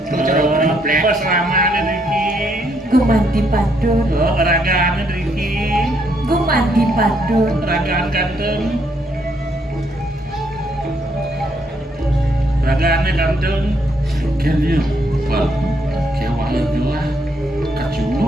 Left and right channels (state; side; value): normal; both; correlation 0.72